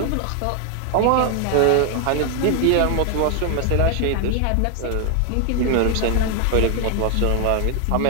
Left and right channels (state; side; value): different; both; correlation 0.00